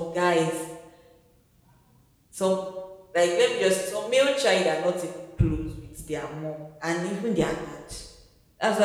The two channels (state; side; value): identical; both; correlation 1.00